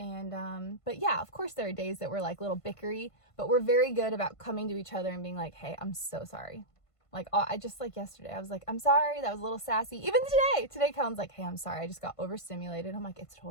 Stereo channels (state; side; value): late; right; 1.5 ms